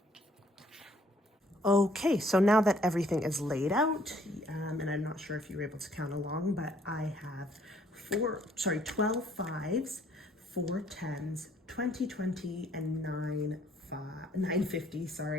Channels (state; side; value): normal; both; correlation 0.63